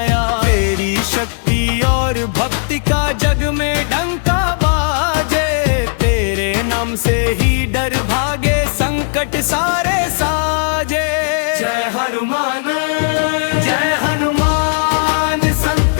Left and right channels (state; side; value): silent; right; digital silence